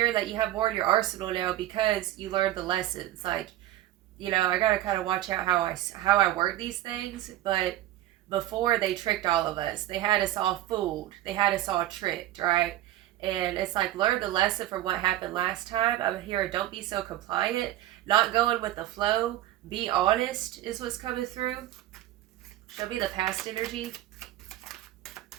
that you have more in your arsenal now because you learned the lessons. Like, you know, I gotta kind of watch out how I word these things. But before, they tricked all of us. They had us all fooled. They had us all tricked, right? And it's like, learn the lesson from what happened last time. I'm here, don't be so compliant, not going with the flow, be honest is what's coming through. Show me the past energy.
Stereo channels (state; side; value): quieter; left; 14.2 dB